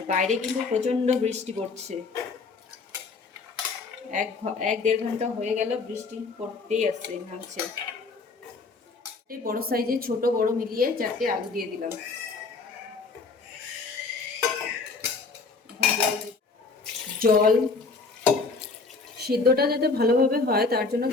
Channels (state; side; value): quieter; right; 4.2 dB